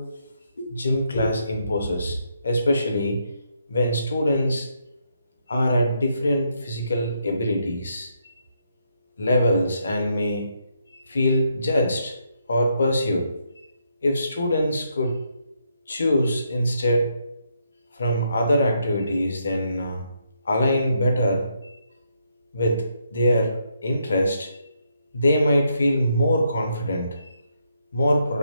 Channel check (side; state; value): both; inverted; correlation -0.77